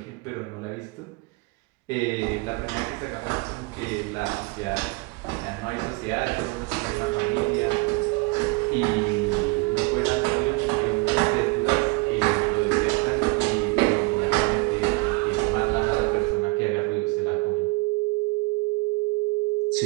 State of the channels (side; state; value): left; quieter; 25.4 dB